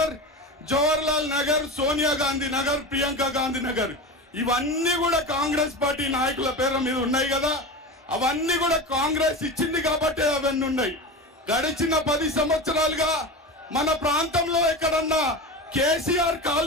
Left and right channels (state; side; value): normal; both; correlation 0.26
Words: జవహర్లాల్ నగర్, సోనియా గాంధీ నగర్, ప్రియాంక గాంధీ నగర్, ఇవన్నీ కూడా కాంగ్రెస్ పార్టీ నాయకుల పేర్ల మీద ఉన్నాయి కదా. అవన్నీ కూడా కాంగ్రెస్ ఇచ్చింది కాబట్టి అవన్నీ ఉన్నాయి. గడిచిన 10 సంవత్సరాలుగా మన ప్రాంతంలో ఎక్కడన్నా కేసీఆర్